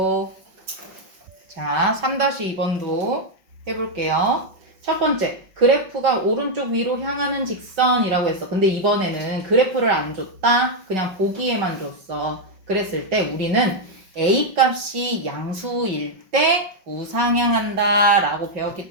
자, 3-2번도 해볼게요. 첫 번째, 그래프가 오른쪽 위로 향하는 직선이라고 했어. 근데 이번에는 그래프를 안 줬다. 그냥 보기에만 줬어. 그랬을 때 우리는 A 값이 양수일 때 우상향한다 라고 배웠기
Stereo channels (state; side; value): late; left; 5.3 ms